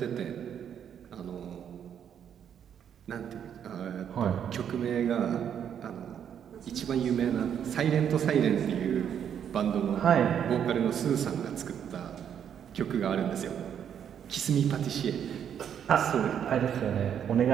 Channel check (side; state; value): left; quieter; 8.7 dB